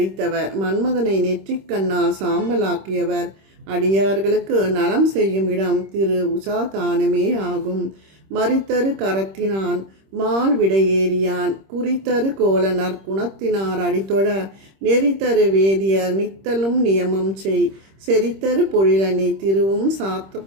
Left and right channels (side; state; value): left; late; 26 ms